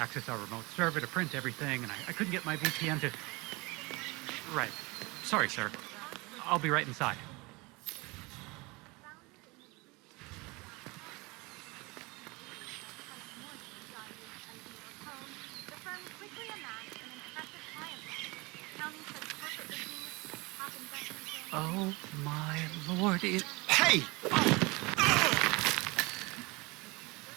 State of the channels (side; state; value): left; quieter; 25.1 dB